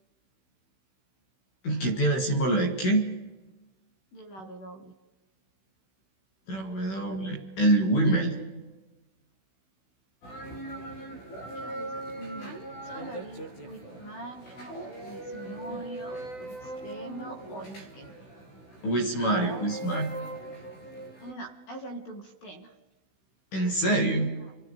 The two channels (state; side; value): late; right; 16 ms